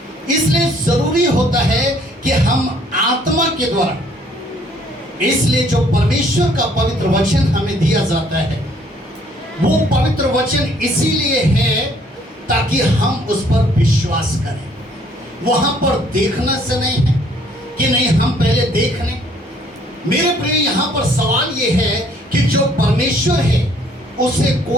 इसलिए जरूरी होता है कि हम आत्मा के द्वारा, इसलिए जो परमेश्वर का पवित्र वचन हमें दिया जाता है वो पवित्र वचन इसीलिए है ताकि हम उस पर विश्वास करें। वहां पर देखना से नहीं है कि नहीं हम पहले देख लें। मेरे प्रिय, यहां पर सवाल यह है कि जो परमेश्वर है उसे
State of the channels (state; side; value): normal; both; correlation 0.62